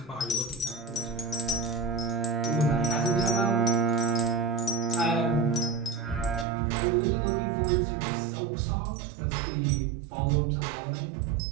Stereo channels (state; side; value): drops out; left; at 6.5 s